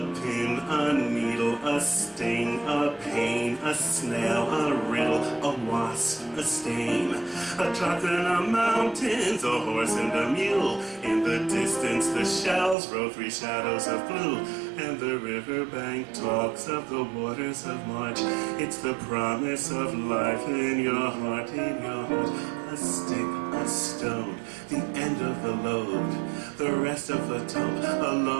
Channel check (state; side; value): drops out; left; at 12.8 s